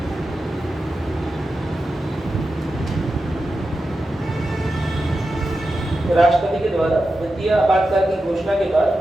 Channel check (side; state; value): both; normal; correlation 0.91